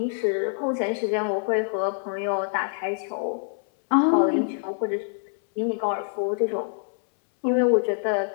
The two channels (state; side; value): silent; right; 62 dB below the other